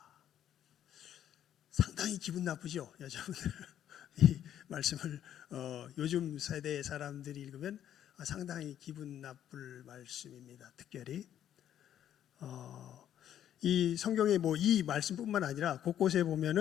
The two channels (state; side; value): quieter; right; 10.6 dB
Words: 상당히 기분 나쁘죠, 여자분들. 이 말씀을 요즘 세대의 사람들이 읽으면 상당히 기분 나쁠 말씀입니다. 특별히 이 성경에 이 말씀뿐만 아니라 곳곳에